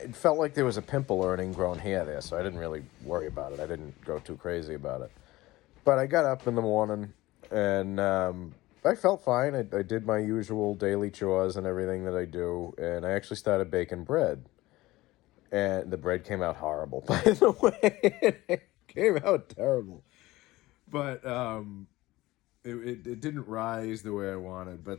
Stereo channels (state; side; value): quieter; right; 18.5 dB